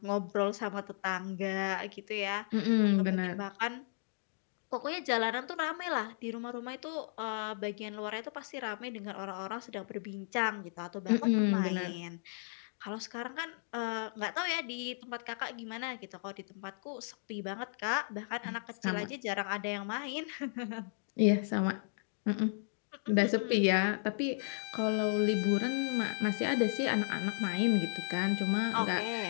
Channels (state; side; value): silent; right; digital silence